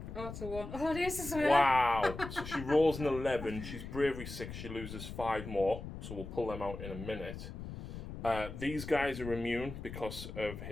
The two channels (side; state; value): left; noise; rumble, 9 dB below the sound